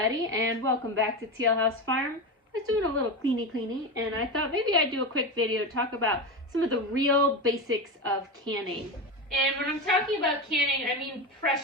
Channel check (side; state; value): both; normal; correlation 0.20